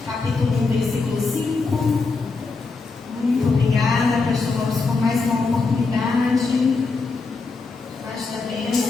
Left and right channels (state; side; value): quieter; right; 4.1 dB